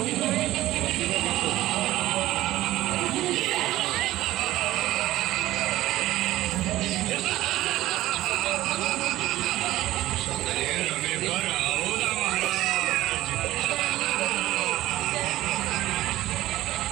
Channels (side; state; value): left; quieter; 15.6 dB